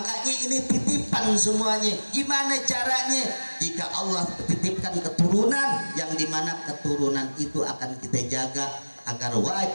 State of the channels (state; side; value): inverted; both; correlation -1.00